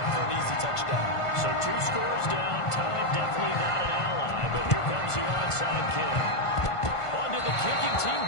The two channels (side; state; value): right; late; 1.5 ms